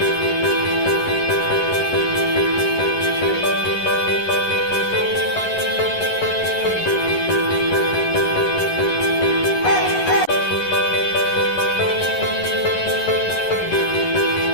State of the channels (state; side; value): late; right; 11 ms